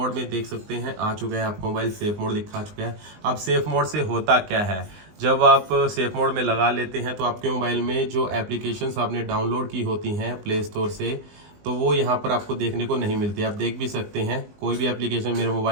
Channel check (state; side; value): late; left; 20 ms